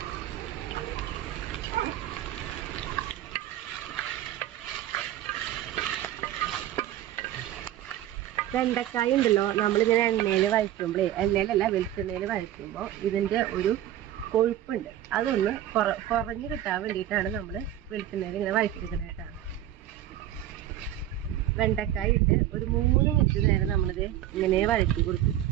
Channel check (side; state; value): left; quieter; 12.6 dB